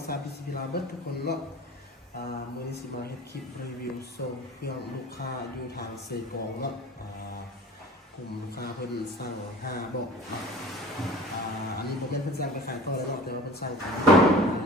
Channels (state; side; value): normal; both; correlation 0.40